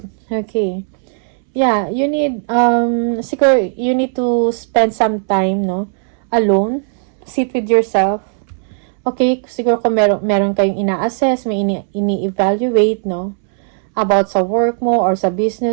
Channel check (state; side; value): silent; left; 68 dB below the other